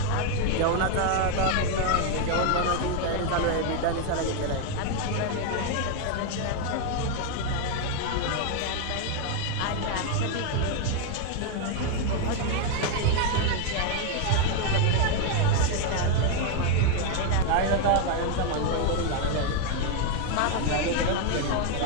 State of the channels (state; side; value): different; both; correlation 0.01